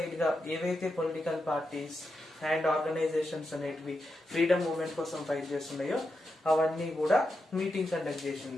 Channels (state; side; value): normal; both; correlation 0.87